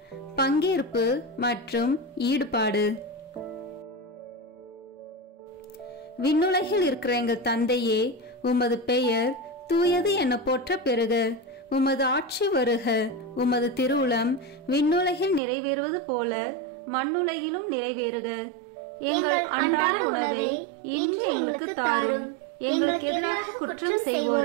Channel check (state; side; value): drops out; left; at 15.4 s